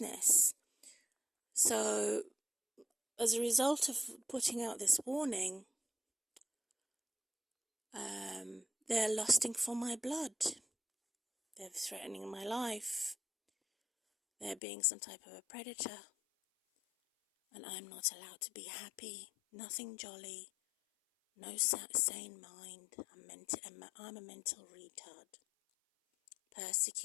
So, as a result of putting out this warning, they're lusting for my blood. They're threatening my life. They're being some type of a predator. and I'm not allowed to be happy, nothing jolly, no sane mind. I'm a mental retard,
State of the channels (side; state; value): right; drops out; at 14.6 s